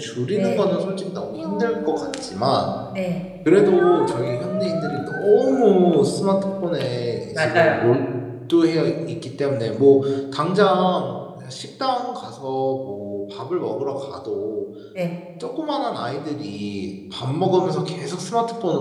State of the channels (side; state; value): both; identical; correlation 1.00